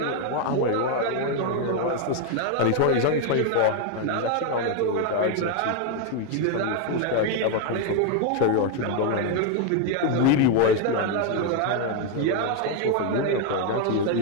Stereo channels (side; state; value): both; different; correlation 0.01